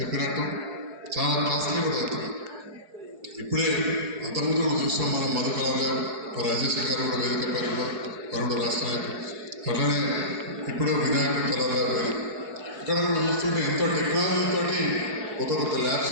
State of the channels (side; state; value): left; late; 4.7 ms